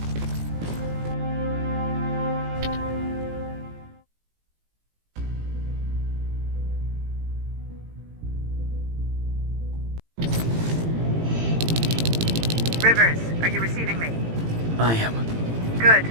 Rivers, are you receiving me? I am. Good.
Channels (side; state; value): left; late; 18 ms